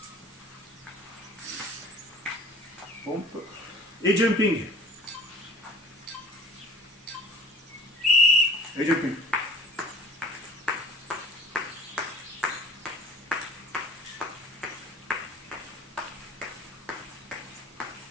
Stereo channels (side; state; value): both; normal; correlation 0.44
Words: Pompe. Et jumping. Et jumping.